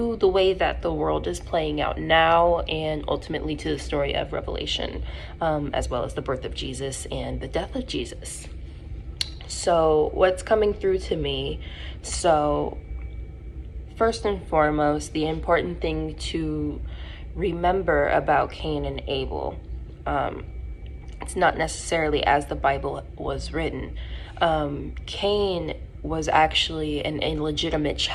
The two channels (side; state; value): both; identical; correlation 1.00